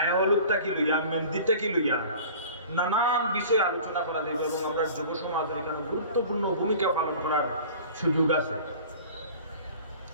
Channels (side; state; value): both; inverted; correlation -0.43